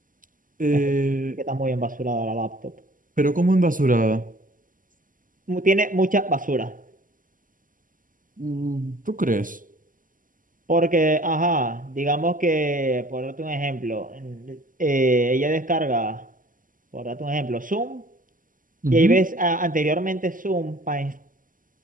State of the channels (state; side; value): late; left; 0.39 ms